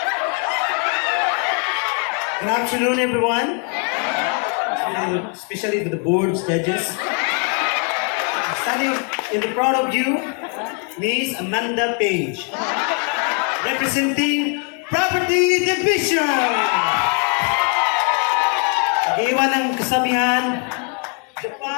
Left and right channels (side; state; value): right; quieter; 37.4 dB